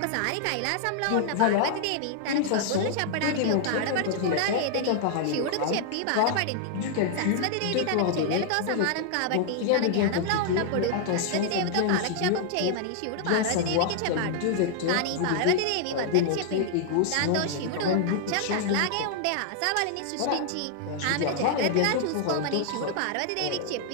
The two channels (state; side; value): different; both; correlation 0.00